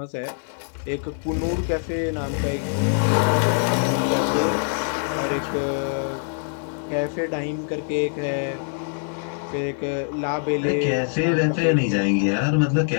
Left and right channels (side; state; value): right; silent; 62 dB below the other